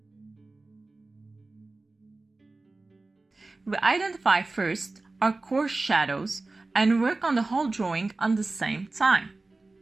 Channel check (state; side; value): quieter; left; 3.3 dB